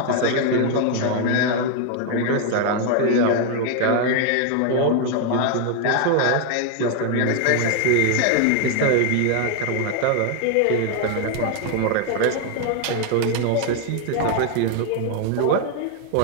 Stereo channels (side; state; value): both; different; correlation 0.01